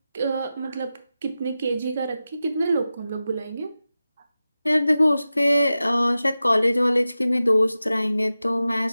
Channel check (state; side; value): inverted; both; correlation -0.94